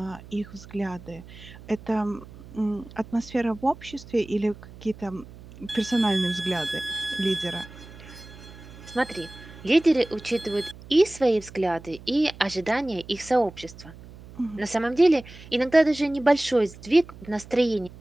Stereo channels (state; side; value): noise; right; hum, 18 dB below the sound